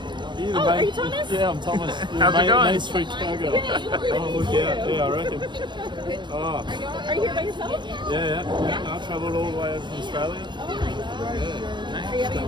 Oh, are you Thomas? Yeah, I'm Thomas. How's it going? Main Street Chicago. Oh, look out. Yeah, I reckon. Oh. Are you here by yourself? Yeah. I travelled all the way over from Australia. Oh my God. Yeah. Are you having a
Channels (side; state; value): left; late; 0.22 ms